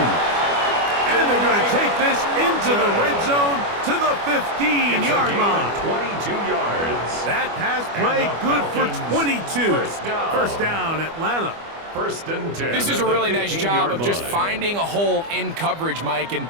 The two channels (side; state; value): left; late; 25 ms